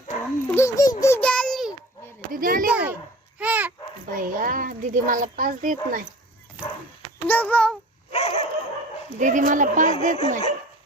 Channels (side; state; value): both; normal; correlation 0.42